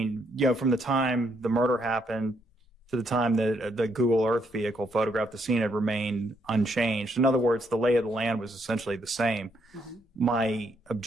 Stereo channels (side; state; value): both; normal; correlation 0.74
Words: from the time the murder happened to the time that the Google Earth vehicle photographed the scene had remained unchanged. In other words, the lay of the land was essentially the same. Mm-hmm. My